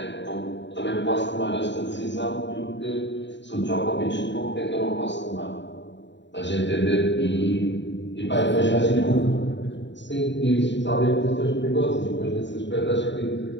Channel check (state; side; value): late; right; 0.52 ms